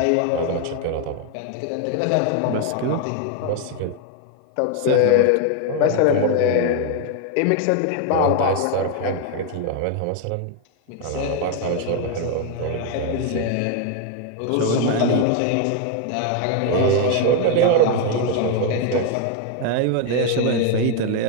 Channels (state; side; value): different; both; correlation 0.00